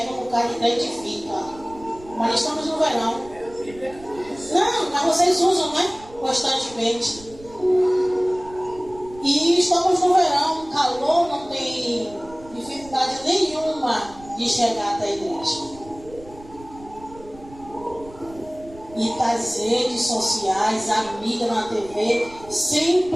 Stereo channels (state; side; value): noise; right; rumble, 20 dB below the sound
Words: o cara identifica. Mas estamos no verão. Não, mas vocês usam, né? Constantemente. E estamos no verão, calor, não tem dificuldade nenhuma de chegar até a igreja. E das redes sociais, a mídia na TV,